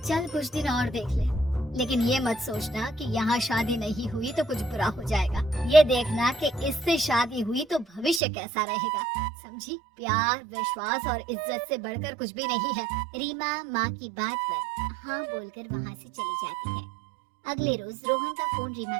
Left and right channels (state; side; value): drops out; left; at 8.2 s